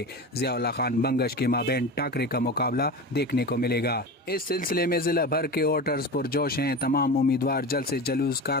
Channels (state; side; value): normal; both; correlation 0.28